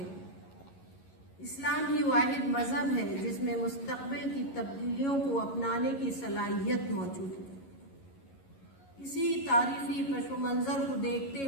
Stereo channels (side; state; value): right; late; 11 ms